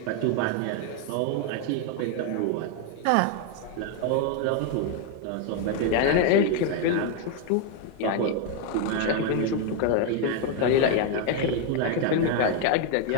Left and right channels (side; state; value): both; different; correlation 0.01